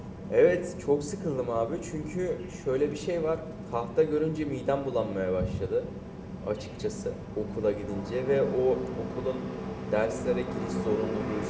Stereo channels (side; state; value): both; identical; correlation 1.00